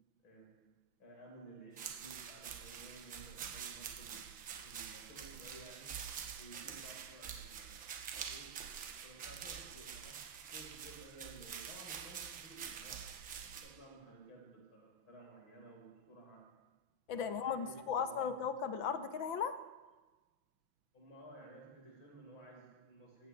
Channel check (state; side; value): late; right; 6.0 ms